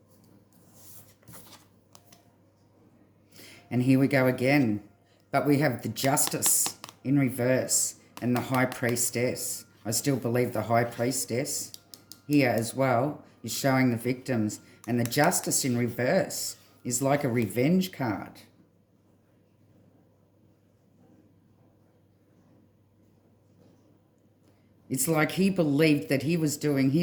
And here we go again. But we have the Justice in reverse and the High Priestess. I still believe the High Priestess here as well is showing the victims. And the Justice in reverse is like a revenge card. It's like he believed that he was doing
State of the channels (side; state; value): both; identical; correlation 1.00